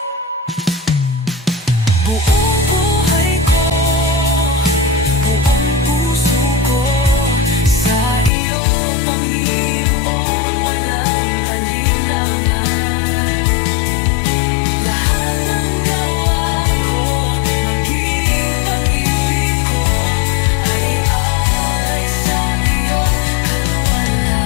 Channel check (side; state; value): right; drops out; at 8.3 s